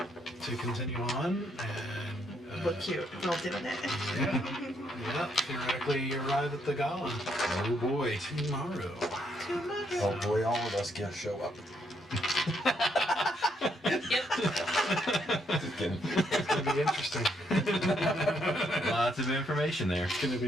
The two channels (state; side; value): normal; both; correlation 0.74